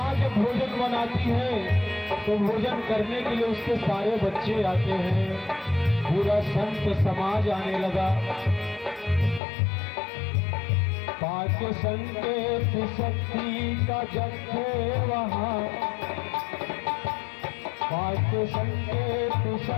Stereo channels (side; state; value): right; drops out; at 9.4 s